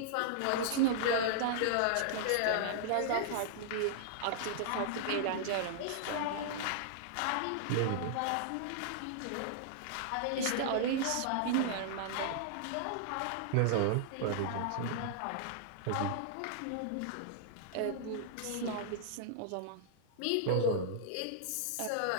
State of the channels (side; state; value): both; different; correlation -0.01